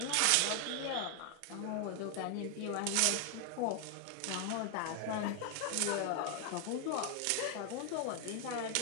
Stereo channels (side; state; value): both; different; correlation 0.01